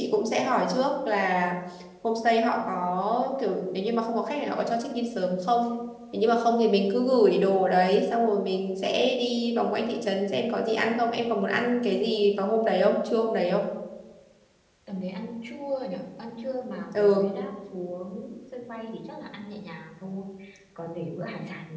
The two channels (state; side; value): identical; both; correlation 1.00